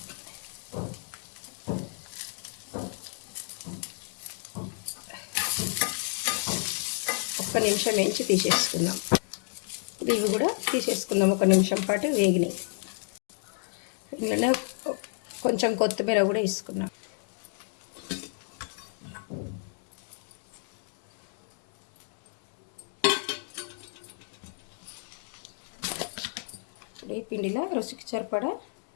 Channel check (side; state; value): right; silent; 56 dB below the other